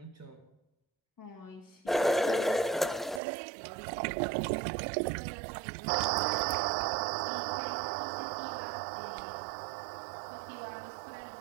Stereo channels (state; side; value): drops out; left; at 3.2 s